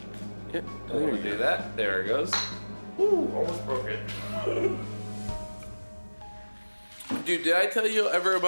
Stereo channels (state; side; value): inverted; both; correlation -1.00